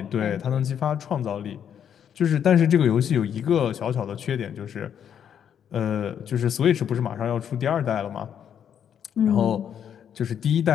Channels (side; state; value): right; quieter; 8.7 dB